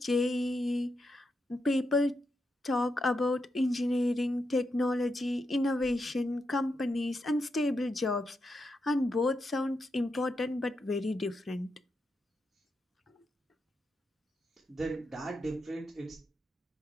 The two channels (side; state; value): both; normal; correlation 0.85